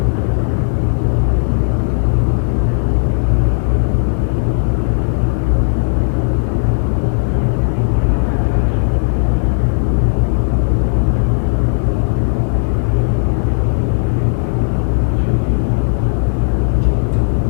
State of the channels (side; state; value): right; silent; 63 dB below the other